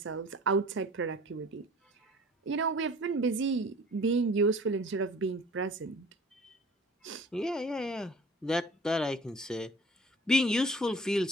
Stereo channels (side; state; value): both; normal; correlation 0.46